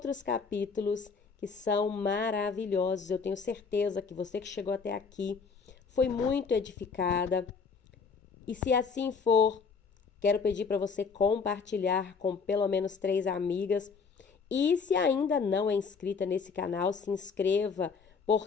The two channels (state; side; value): quieter; right; 5.3 dB